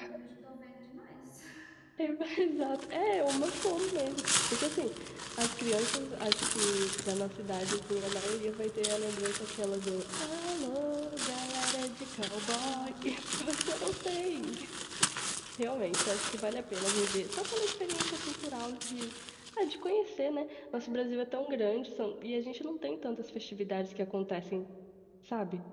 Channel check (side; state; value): both; identical; correlation 1.00